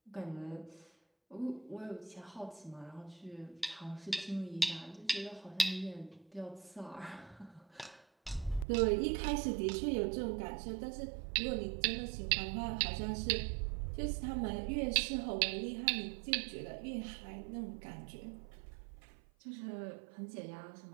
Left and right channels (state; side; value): drops out; left; at 8.7 s